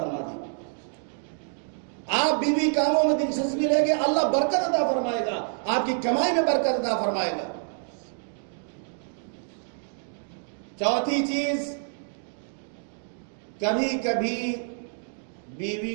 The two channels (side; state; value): left; silent; 60 dB below the other